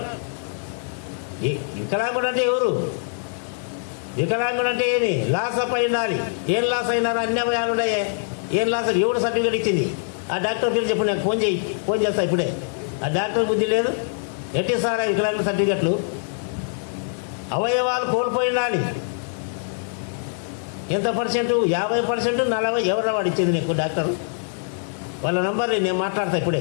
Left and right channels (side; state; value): right; silent; digital silence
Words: వికలాంగుడు అంటే ఎవరు? వికలాంగుడు అంటే ఏమి? లాస్ అప్ అయినాలి. ఏం లాస్ అయినారు? అన్ని అవయాలు ఉన్నాయే. ఏం లాస్? ఎవడు సర్టిఫికేట్ ఇచ్చింది? ఆ డాక్టర్ పేరు చెప్పు, నాకు ఫోన్ చేస్తా ఇప్పుడే. ఆ డాక్టర్ బుద్ధి లేదు. ఎట్టి సార్ వికలాంగుల సర్టిఫికెట్లు? అవయవాలు కోల్పోయినాలి. ఎంత పర్సెంట్? 50%, 40%. ఎవరు వాడు ఇచ్చింది నీకు డాక్టర్? వాళ్ళ నంబర్ నేను మాట్లాడతా